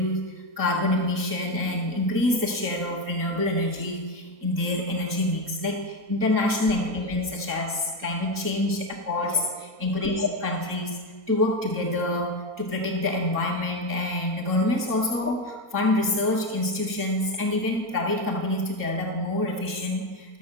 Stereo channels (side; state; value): left; late; 3.7 ms